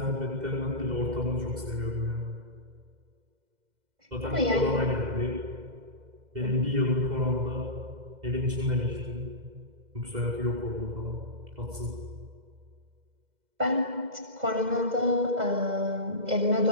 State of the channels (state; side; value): late; left; 2.0 ms